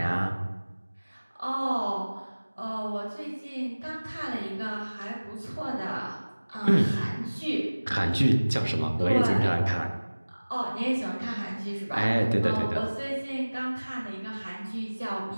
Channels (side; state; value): both; inverted; correlation -1.00